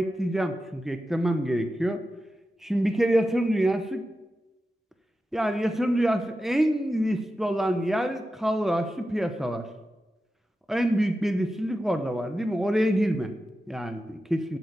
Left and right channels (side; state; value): both; normal; correlation 0.91